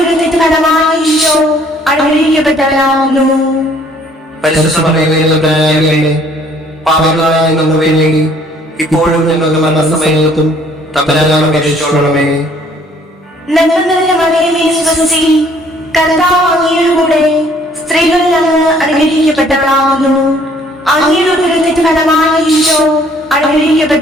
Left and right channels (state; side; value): normal; both; correlation 0.60